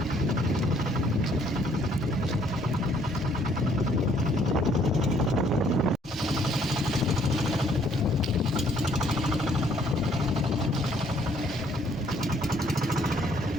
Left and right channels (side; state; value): both; normal; correlation 0.64